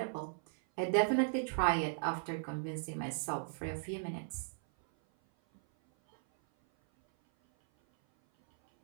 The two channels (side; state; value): left; silent; 54 dB below the other